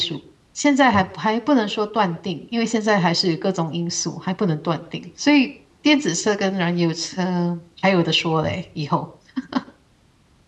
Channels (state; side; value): identical; both; correlation 1.00